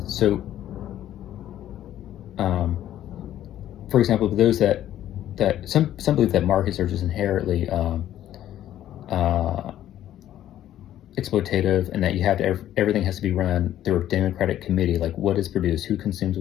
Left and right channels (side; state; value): right; quieter; 12.1 dB